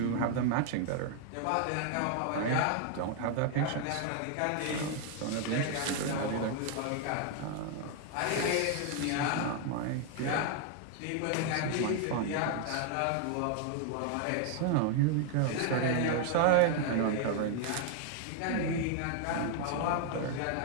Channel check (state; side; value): different; both; correlation 0.00